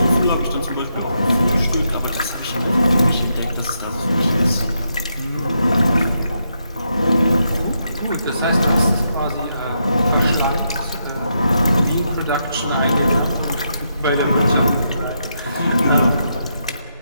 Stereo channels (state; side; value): inverted; both; correlation -0.81